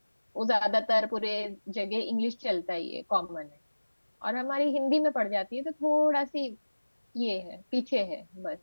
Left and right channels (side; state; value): both; inverted; correlation -1.00